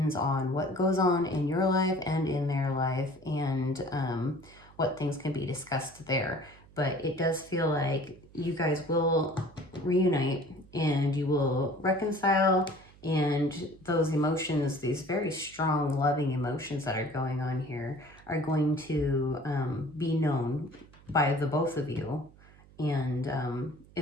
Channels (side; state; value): right; noise; hum, 24 dB below the sound